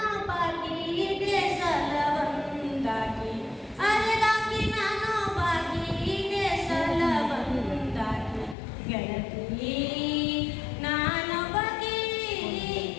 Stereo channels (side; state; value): right; drops out; at 8.6 s